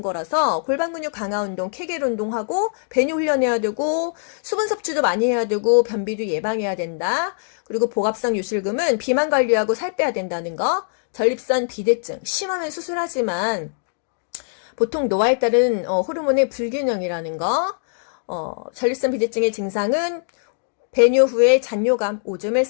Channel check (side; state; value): right; silent; digital silence